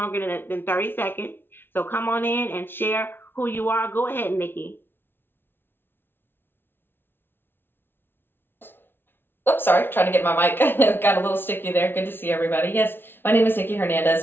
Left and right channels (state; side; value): late; right; 0.11 ms